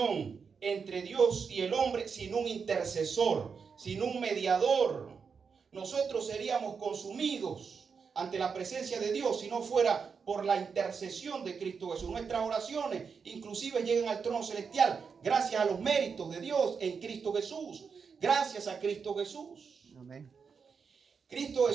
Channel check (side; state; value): left; quieter; 5.8 dB